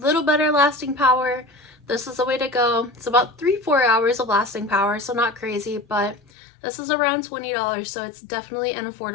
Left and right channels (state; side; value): drops out; right; at 6.2 s